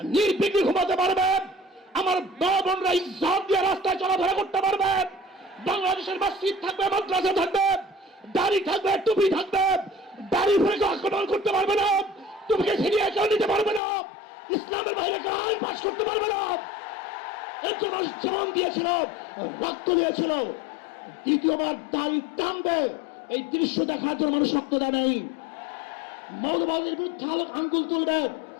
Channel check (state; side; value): drops out; right; at 13.8 s